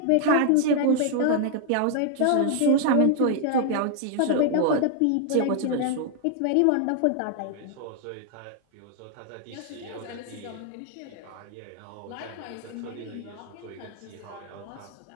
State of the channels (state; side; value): different; both; correlation 0.00